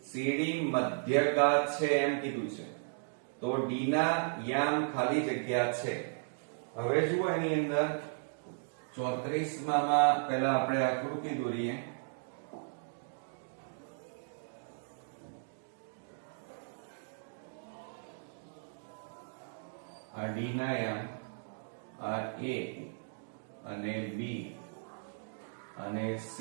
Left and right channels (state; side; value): silent; left; digital silence